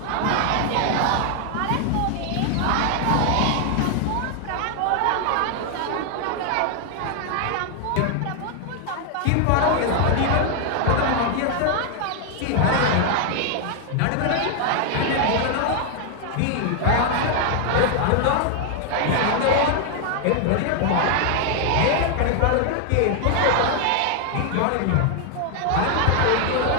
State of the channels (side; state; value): both; different; correlation 0.00